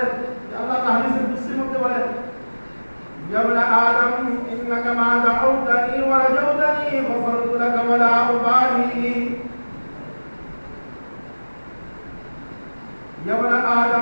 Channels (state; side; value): inverted; both; correlation -1.00